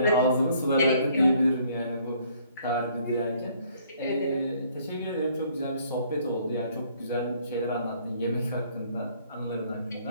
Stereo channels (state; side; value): inverted; both; correlation -0.62